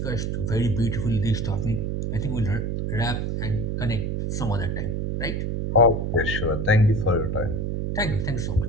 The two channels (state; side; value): noise; right; hum, 1 dB below the sound